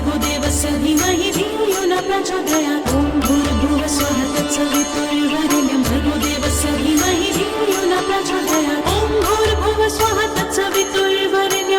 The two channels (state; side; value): identical; both; correlation 1.00